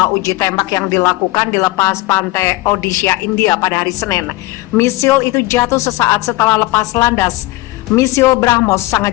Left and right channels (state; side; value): quieter; right; 19.2 dB